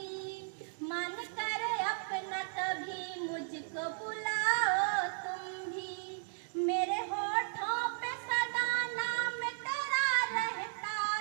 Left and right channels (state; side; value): silent; left; digital silence